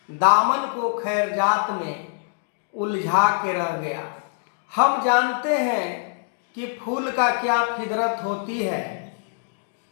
दामन को खैरजात में उलझा के रह गया। हम जानते हैं कि फूल का क्या फितरत होती है।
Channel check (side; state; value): right; silent; digital silence